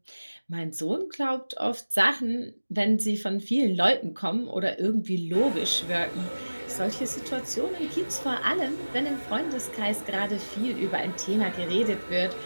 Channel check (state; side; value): inverted; both; correlation -1.00